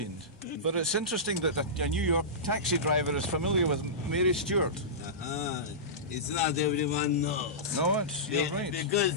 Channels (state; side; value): normal; both; correlation -0.18